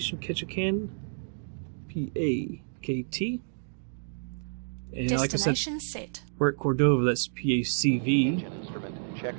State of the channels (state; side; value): silent; left; digital silence